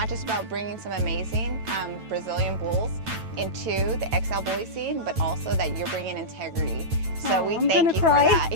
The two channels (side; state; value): left; late; 9.1 ms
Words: just about bringing some amazing Brazilian bulls into the XL bully scene, but also that you're bringing integrity. So we I'm thank gonna you cry. for that.